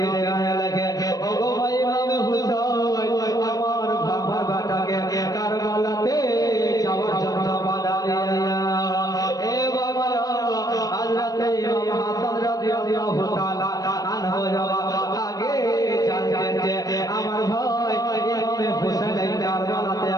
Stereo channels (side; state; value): right; late; 0.18 ms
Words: লেখে ওগো ভাই ইমাম হুসাইন আমার বাবার বেটাকে কারবালাতে যাওয়ার জন্য বাধা দিলেন এ বাবারা হযরত ইমাম হাসান রাদিয়াল্লাহু তাআলা আনহু আগে জানতেন যে আমার ভাই ইমাম হুসাইন কারবালাতে